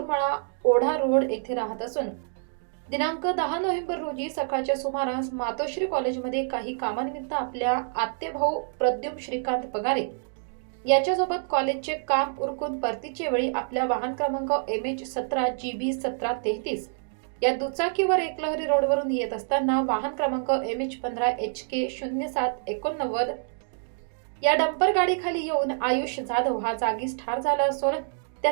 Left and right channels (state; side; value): silent; left; digital silence